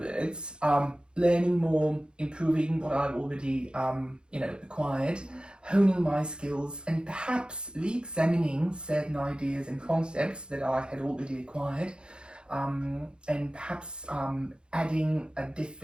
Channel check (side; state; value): left; late; 0.051 ms